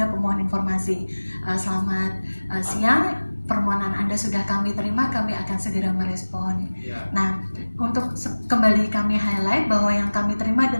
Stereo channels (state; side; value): inverted; both; correlation -1.00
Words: pemohon informasi. Selamat siang, permohonan Anda sudah kami terima, kami akan segera merespon. Nah, untuk kembali kami highlight bahwa yang kami terima